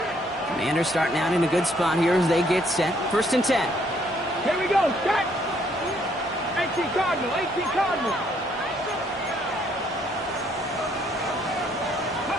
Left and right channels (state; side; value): normal; both; correlation 0.68